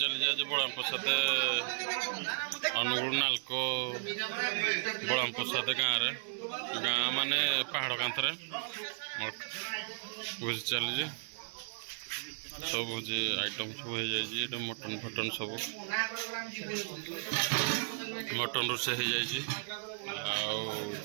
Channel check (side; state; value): left; silent; 55 dB below the other